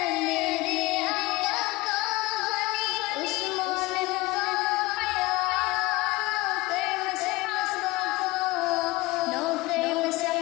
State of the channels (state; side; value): quieter; right; 20.6 dB